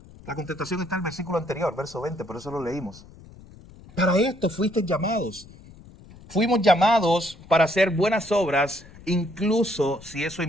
La contestación está en el versículo anterior, verso 20, por eso lo leímos. Para esto fuiste llamados. Fuimos llamados para hacer buenas obras, incluso si eso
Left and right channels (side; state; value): left; noise; rumble, 21 dB below the sound